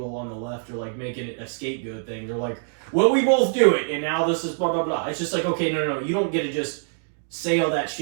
on the left are like making it a scapegoat thing. They're like, well, we both do it, and now this is blah, blah, blah. It's just like, okay, no. You don't get to just say all that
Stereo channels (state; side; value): silent; left; digital silence